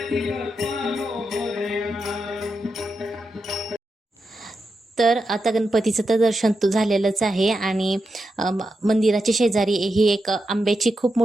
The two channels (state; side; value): normal; both; correlation 0.87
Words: तर आता गणपतीचं तर दर्शन झालेलंच आहे आणि मंदिराच्या शेजारी ही एक आंब्याची खूप